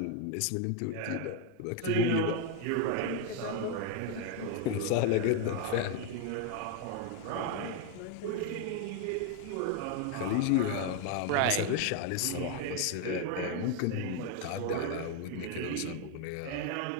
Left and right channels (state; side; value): different; both; correlation 0.01